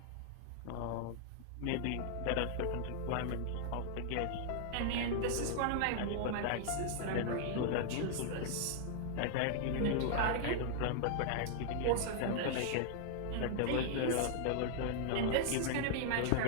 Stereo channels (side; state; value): both; different; correlation -0.01